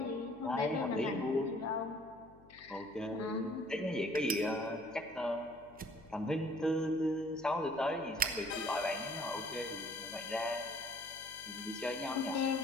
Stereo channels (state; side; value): noise; left; hum, 24 dB below the sound